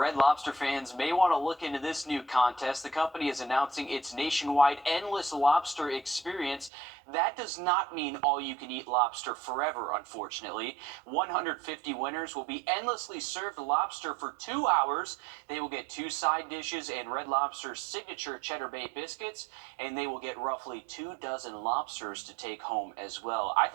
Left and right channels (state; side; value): drops out; left; at 6.7 s